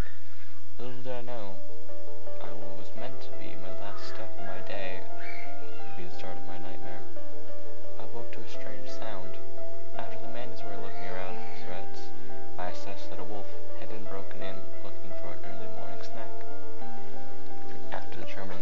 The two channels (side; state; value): both; normal; correlation 0.11